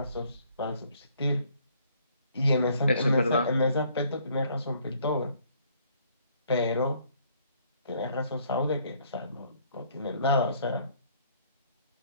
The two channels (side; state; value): both; inverted; correlation -0.64